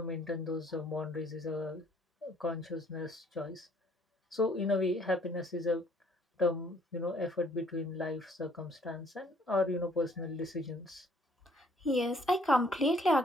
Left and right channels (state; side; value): normal; both; correlation 0.62